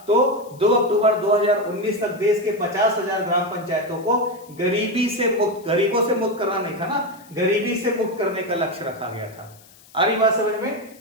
तो 2 अक्टूबर 2019 तक देश के 50,000 ग्राम पंचायतों को गरीबों से मुक्त करना नहीं था ना, गरीबी से मुक्त करने का लक्ष्य रखा गया था। आ रही बात समझ में?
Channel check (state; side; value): noise; left; hiss, 25 dB below the sound